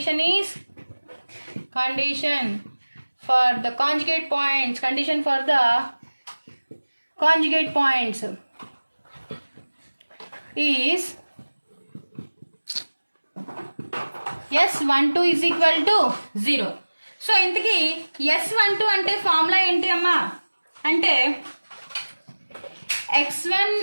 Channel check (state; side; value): inverted; both; correlation -1.00